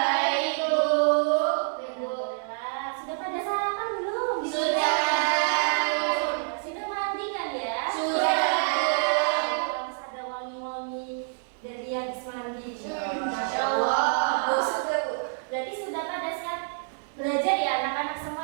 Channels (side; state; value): left; silent; digital silence